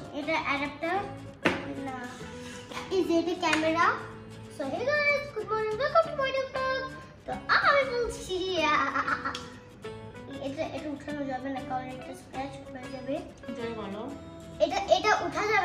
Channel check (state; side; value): identical; both; correlation 1.00